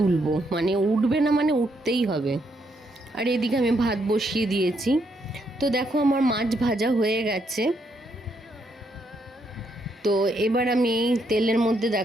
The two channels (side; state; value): both; normal; correlation 0.76